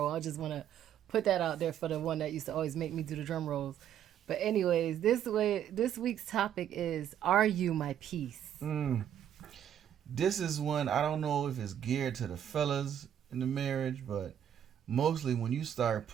I just want to put that out there for the one that used to always make me do the drum rolls. But anyways, this week's topic is, are you my peace? This is one, I don't know if it's geared to the fellas in the marriage, but mostly when you start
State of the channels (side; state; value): left; quieter; 9.9 dB